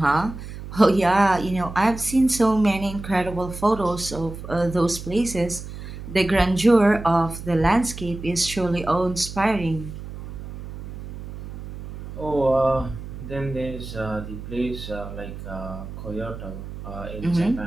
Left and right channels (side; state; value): right; noise; hum, 11 dB below the sound